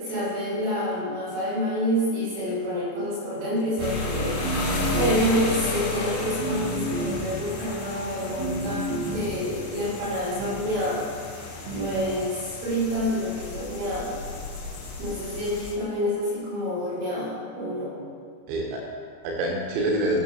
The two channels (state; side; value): late; left; 31 ms